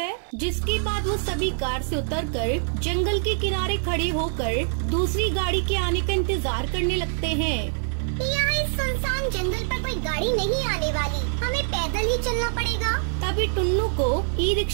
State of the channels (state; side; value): silent; left; 62 dB below the other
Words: जिसके बाद वो सभी कार से उतरकर जंगल के किनारे खड़े होकर दूसरी गाड़ी के आने का इंतजार करने लगते हैं। यहाँ इस सुनसान जंगल पर कोई गाड़ी नहीं आने वाली, हमें पैदल ही चलना पड़ेगा। तभी टुन्नू को ई